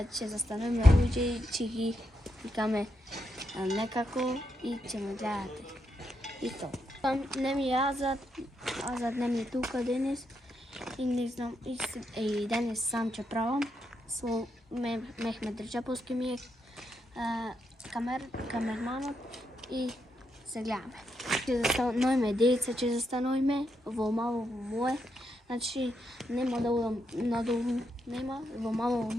застануваме луѓе и ќе ги викаме некако и ќе ме гледате. И то. Не ми е Азад не ми е тука денес и не знам, и денес сам ќе правам. Со Мехмет Реджеповски ми е камерманот и се гледаме. Ќе застануваме деца, ќе застануваме во мало мое. Значи нема да удам надолу, нема, во мало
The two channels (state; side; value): normal; both; correlation 0.82